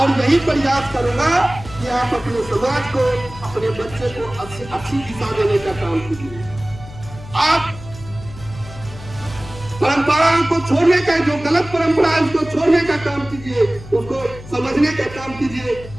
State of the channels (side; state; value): left; noise; hum, 15 dB below the sound